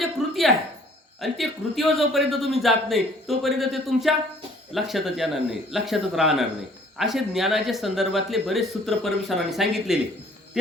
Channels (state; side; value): normal; both; correlation 0.57